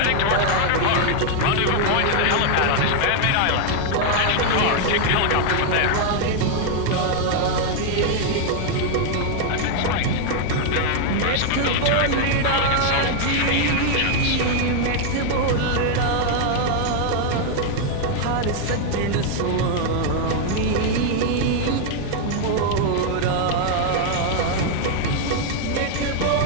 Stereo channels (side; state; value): both; different; correlation 0.00